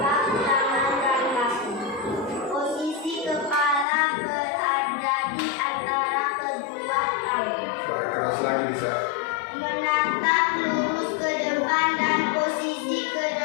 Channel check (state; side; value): drops out; right; at 3.9 s